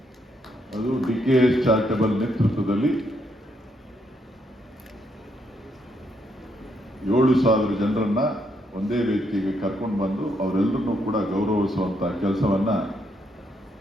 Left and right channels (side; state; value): both; normal; correlation 0.75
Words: ಅದು DKS ಚಾರಿಟಬಲ್ ನೇತೃತ್ವದಲ್ಲಿ 7,000 ಜನರನ್ನ ಒಂದೇ ವೇದಿಕೆಗೆ ಕರ್ಕೊಂಡು ಬಂದು ಅವರೆಲ್ಲರನ್ನೂ ಕೂಡ ಗೌರವಿಸುವಂತ ಕೆಲಸವನ್ನ